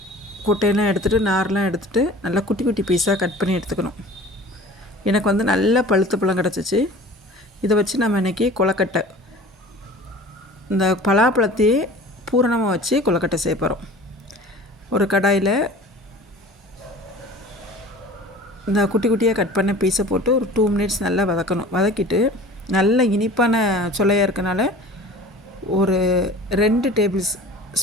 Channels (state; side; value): normal; both; correlation 0.42